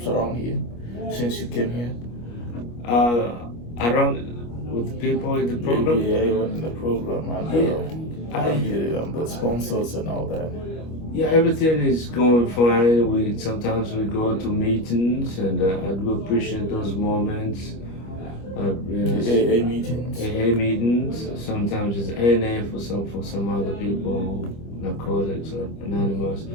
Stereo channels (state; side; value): late; right; 25 ms